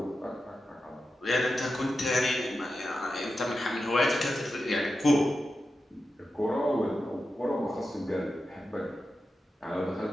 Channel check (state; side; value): normal; both; correlation 0.90